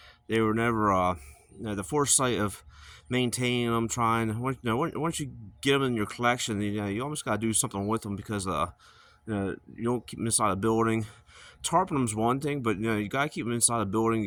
they were never the foresight of maintaining them, trying once you get them in your collection, you almost got to do something with them because you don't keep them inside a building. Tarping them's one thing, but you gotta keep them inside a building.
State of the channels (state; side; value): identical; both; correlation 1.00